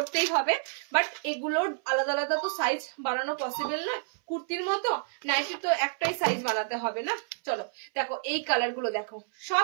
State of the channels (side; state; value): left; silent; 58 dB below the other